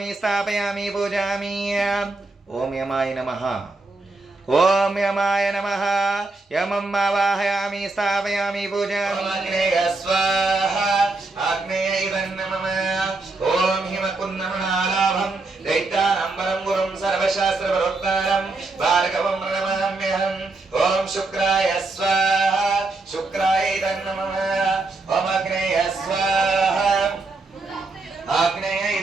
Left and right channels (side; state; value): left; quieter; 3.4 dB